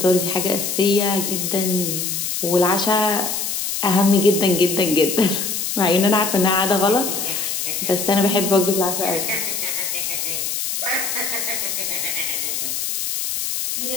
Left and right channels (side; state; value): left; noise; hiss, 2 dB below the sound